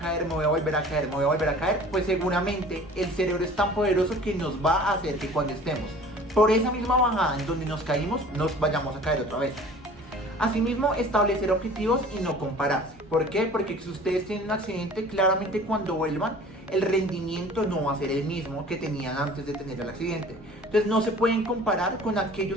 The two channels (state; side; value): normal; both; correlation 0.46